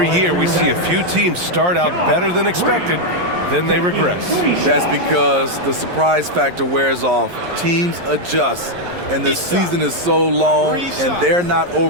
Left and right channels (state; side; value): late; left; 11 ms